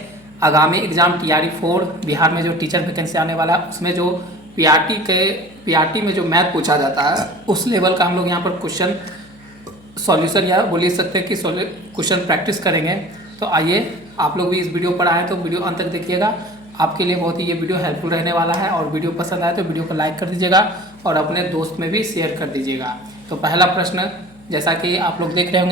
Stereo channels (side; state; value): left; noise; hum, 26 dB below the sound